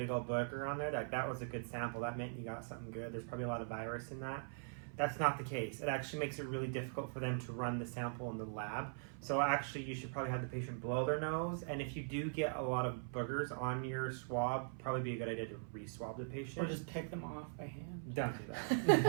old booger on there, that was a good sample. That meant you got something good. There's probably a lot of virus in that. That's not the case. It actually makes it really difficult for them to run the sample in the lab. So actually you should probably have the patient blow their nose. And if you do get a lot of boogers on your swab, probably be a good idea to re-swab the patient. Or just take them off by hand. Don't do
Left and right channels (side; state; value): left; silent; 50 dB below the other